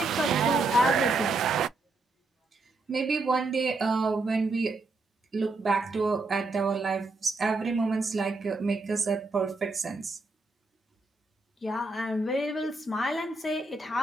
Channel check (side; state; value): left; quieter; 3.3 dB